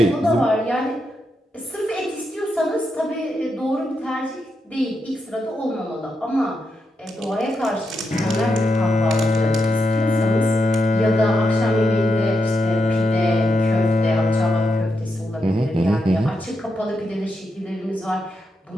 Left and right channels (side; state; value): both; normal; correlation 0.84